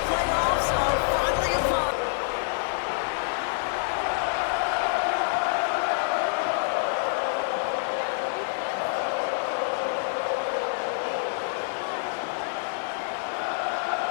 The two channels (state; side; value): silent; right; 57 dB below the other